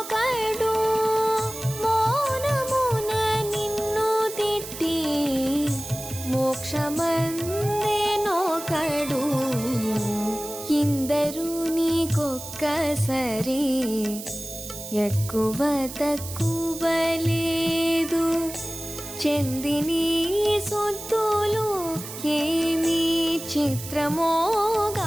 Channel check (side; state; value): right; noise; hiss, 11 dB below the sound